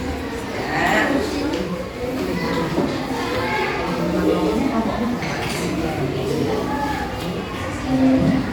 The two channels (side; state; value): both; identical; correlation 1.00